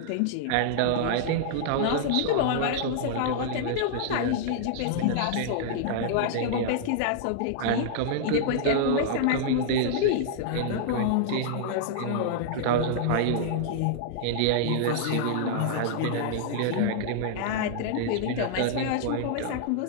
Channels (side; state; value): both; different; correlation -0.01